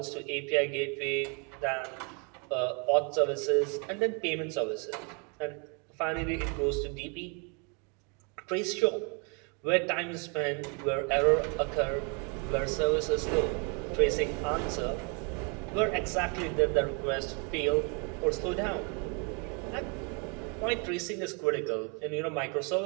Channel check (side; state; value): left; quieter; 34.5 dB